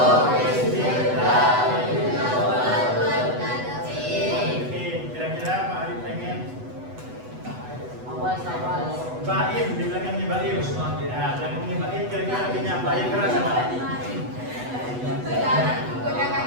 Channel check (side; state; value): left; late; 8.1 ms